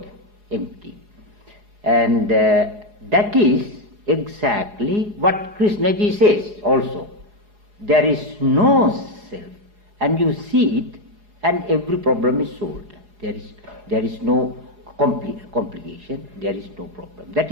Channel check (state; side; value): late; left; 4.8 ms